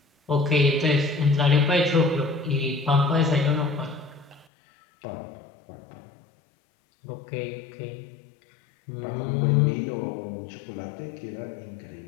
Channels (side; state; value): right; drops out; at 4.5 s